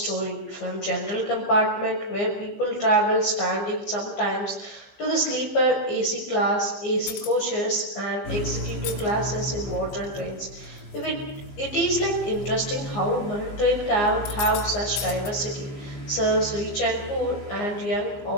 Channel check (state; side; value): late; right; 15 ms